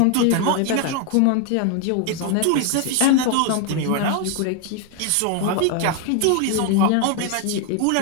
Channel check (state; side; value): different; both; correlation 0.01